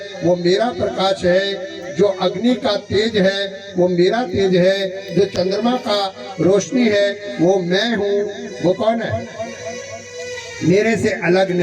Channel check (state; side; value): identical; both; correlation 1.00